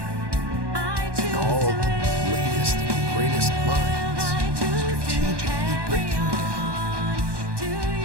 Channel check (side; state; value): left; late; 1.2 ms